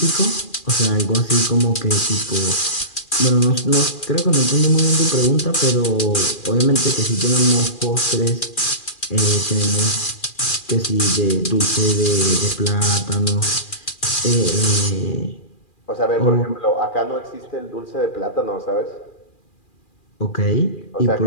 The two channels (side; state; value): right; late; 2.4 ms